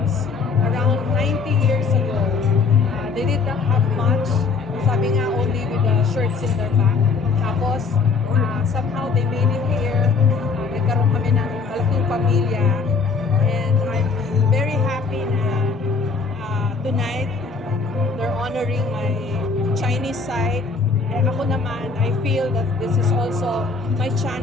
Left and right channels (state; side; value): quieter; right; 4.8 dB